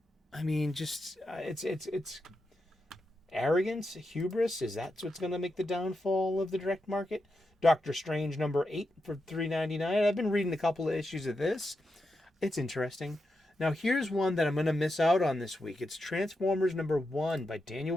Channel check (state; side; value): normal; both; correlation 0.87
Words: I mean, just it's arrogance, hubris. Is that what's going to make the downfall of the direct market? Doctor Strange #8 for $3.99. I've been reading a couple of issues of this. It's interesting. Now here's one that I'm going to miss out on this week. It's Transformers #1 by Daniel